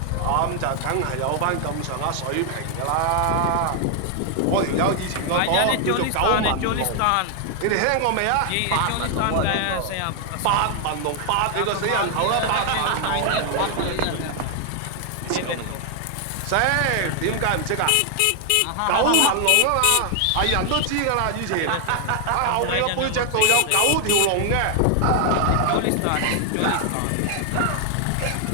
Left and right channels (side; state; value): both; different; correlation 0.00